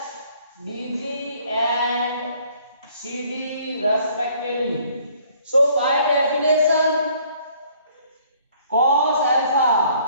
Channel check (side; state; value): both; inverted; correlation -0.60